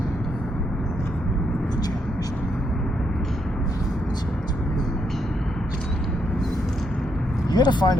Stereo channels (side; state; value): both; normal; correlation 0.77